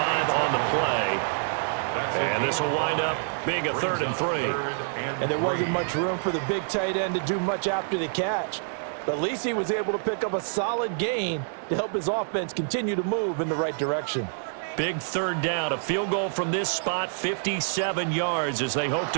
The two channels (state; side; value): silent; left; digital silence